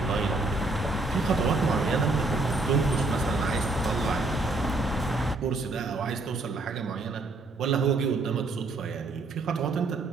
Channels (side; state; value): left; quieter; 3.1 dB